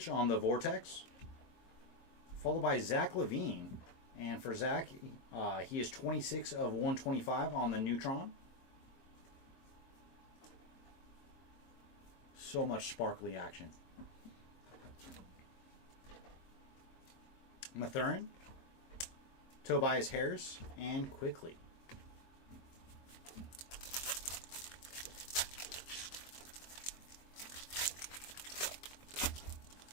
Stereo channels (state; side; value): late; right; 22 ms